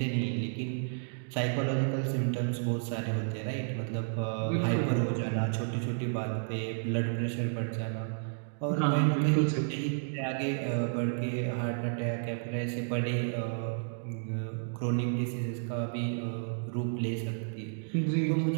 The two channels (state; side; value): silent; left; digital silence